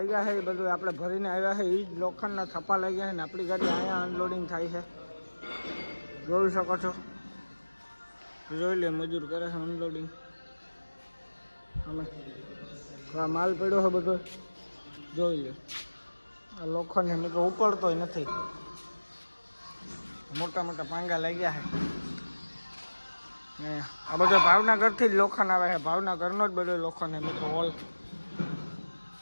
છે એ બધું આપણે ભરીને આવ્યા છે, એ જ લોખંડના થપ્પા લાગ્યા છે ને આપણી ગાડી અહીંયા અનલોડિંગ થાય છે. જોઈ શકો છો, જોઈ લે મજૂર કરે છે અનલોડિંગ. અમે આ માલ પડ્યો છે બધો જોઈ લે. આ લોખંડ મેં તો ઉપડતોય નથી, મોટા મોટા પાંગા લાગ્યા છે. ને આ બધો ભાવનગરથી જ લોખંડ આવે છે, ભાવનગરનો જ બધો લોખંડ છે મિત્રો.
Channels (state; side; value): inverted; both; correlation -1.00